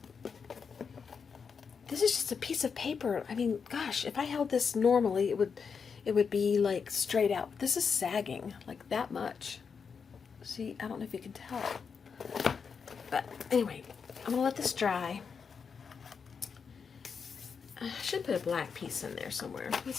This is just a piece of paper. I mean, gosh, if I held this normally, it would be like straight out. This is sagging like that much. See, I don't know if you can tell. But anyway, I'm gonna let this dry. I should put a black piece in there somewhere.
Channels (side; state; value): right; quieter; 5.9 dB